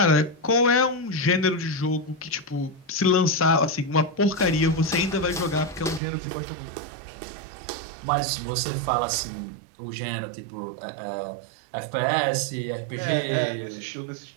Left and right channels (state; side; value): drops out; left; at 6.0 s